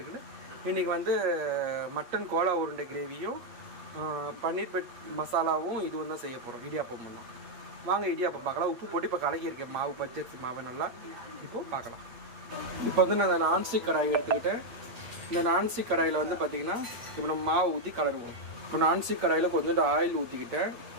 இருக்குன்னு. இன்றைக்கி வந்து மட்டன் கோலா உருண்டை கிரேவியும் பன்னீர் பெட் மசாலாவும் இதுவும் தான் செய்ய போகிறோம். இடியாப்பமும் தான். வாங்க இடியாப்பம் பார்க்கலாம். உப்பு போட்டு இப்போ கலக்கியிருக்கேன் மாவு, பச்சரிசி மாவை நல்லா. இப்போது பார்க்கலாம். இப்போ வந்து நான் நான்ஸ்டிக் கடாய் எடுத்துக்கிட்டேன். இந்த நான்ஸ்டிக் கடாயில் வந்து பார்த்திங்கன்னா இப்போ நம்ம மாவு ஊற்றி கலருவோம். இப்போ நான்ஸ்டிக் கடாயில் கொஞ்சோண்டு ஆயில் ஊற்றிக்கிட்டேன்,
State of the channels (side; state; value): left; late; 8.5 ms